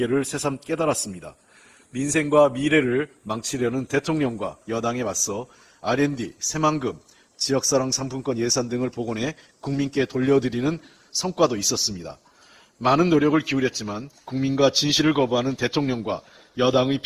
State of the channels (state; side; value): identical; both; correlation 1.00